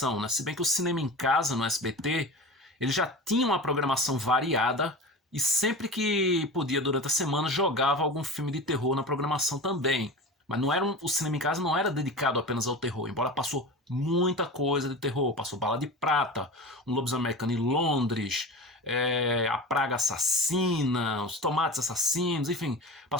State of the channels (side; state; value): both; normal; correlation 0.32